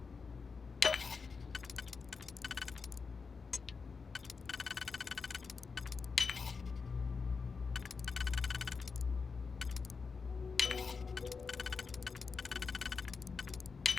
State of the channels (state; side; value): quieter; right; 5.0 dB